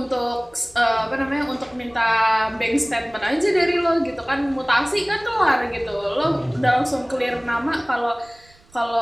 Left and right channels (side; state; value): right; noise; rumble, 28 dB below the sound